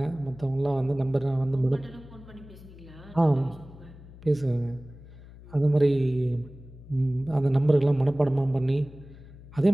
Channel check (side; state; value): left; noise; hum, 19 dB below the sound